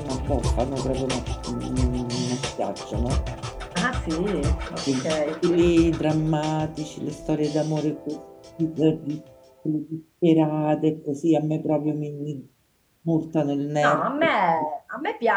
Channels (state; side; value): identical; both; correlation 1.00